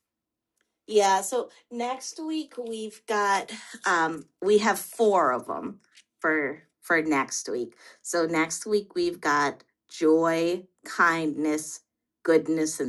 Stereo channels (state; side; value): identical; both; correlation 1.00